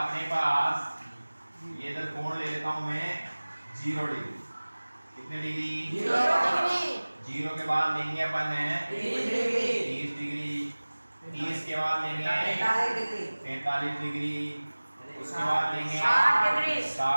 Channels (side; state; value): both; inverted; correlation -1.00